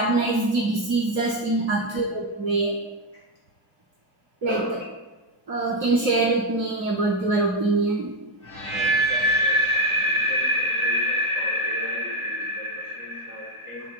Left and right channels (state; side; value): late; left; 2.8 ms